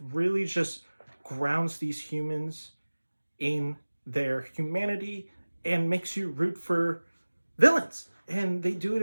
really just grounds these humans in their humanity and makes you root for villains. And they do it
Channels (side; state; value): both; inverted; correlation -1.00